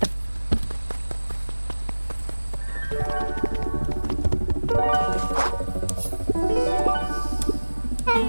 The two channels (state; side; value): inverted; both; correlation -1.00